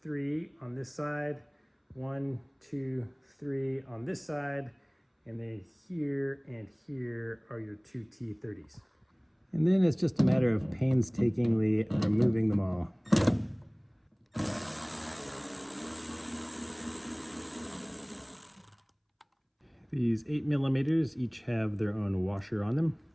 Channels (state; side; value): identical; both; correlation 1.00